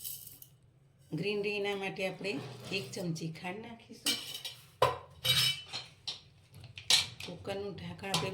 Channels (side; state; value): both; identical; correlation 1.00